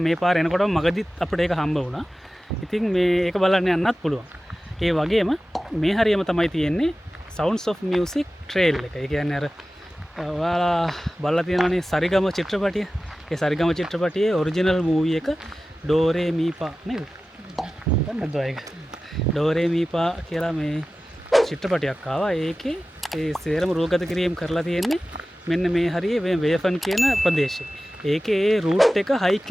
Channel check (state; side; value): normal; both; correlation 0.95